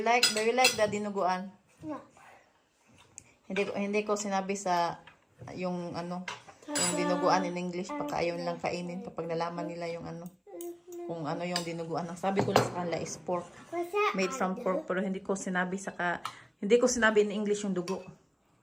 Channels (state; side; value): identical; both; correlation 1.00